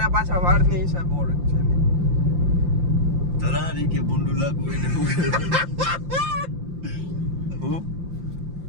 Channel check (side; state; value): left; late; 5.8 ms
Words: પાછા વાળની હિસાબ ઓળખ છે. તરારી કે બુંડુ લાગુ એને હું